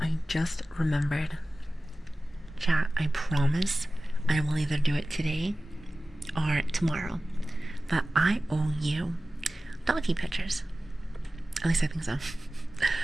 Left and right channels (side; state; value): both; normal; correlation 0.96